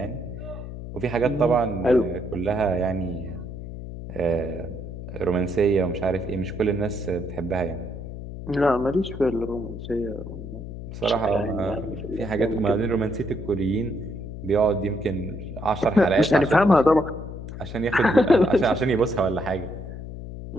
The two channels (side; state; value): left; noise; hum, 9 dB below the sound